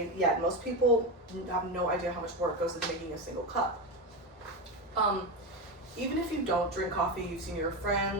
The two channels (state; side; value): normal; both; correlation 0.17